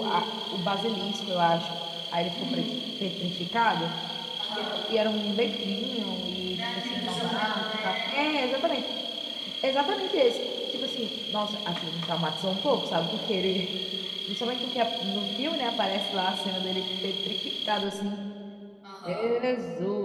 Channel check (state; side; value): identical; both; correlation 1.00